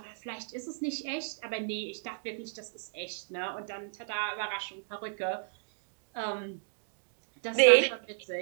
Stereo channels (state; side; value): silent; left; digital silence